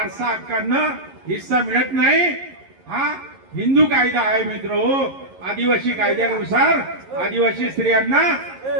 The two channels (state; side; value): late; left; 11 ms